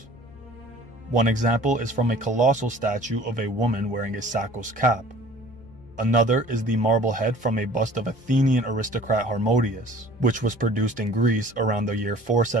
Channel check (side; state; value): left; noise; hum, 27 dB below the sound